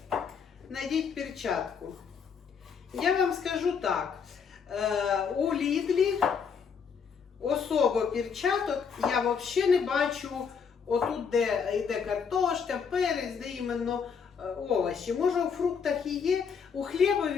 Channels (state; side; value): quieter; right; 6.3 dB